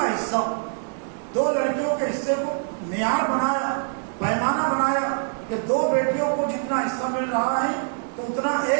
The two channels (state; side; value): silent; left; digital silence